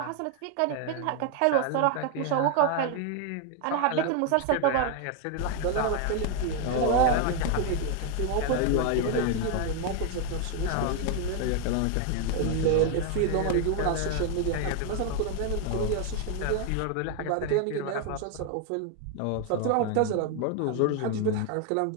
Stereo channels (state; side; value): different; both; correlation 0.01